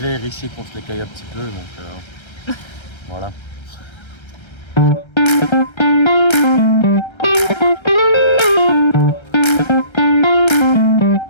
ici qu'on se les caille un petit peu. Donc voilà.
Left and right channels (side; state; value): right; late; 1.3 ms